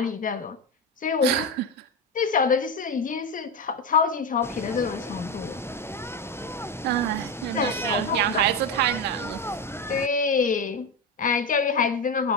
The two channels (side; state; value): both; normal; correlation 0.14